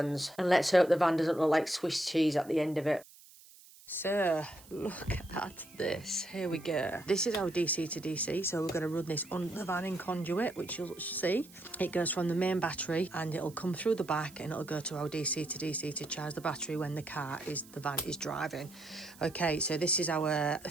And let's hope the van doesn't look like Swiss cheese at the end of it. So, look at this. Here we go. This is our DC to DC, so we're going to run this on the van in conduit, which you'll see. It goes from the main battery and it'll come through the back and it'll go to our DC to DC to charge the battery when the van is driving. Okay, so this is our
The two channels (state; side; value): noise; right; hiss, 22 dB below the sound